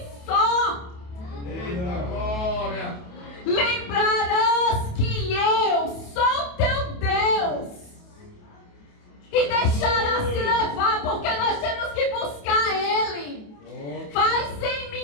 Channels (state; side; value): late; right; 28 ms